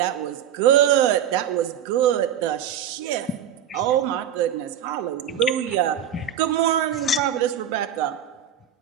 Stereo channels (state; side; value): quieter; left; 9.1 dB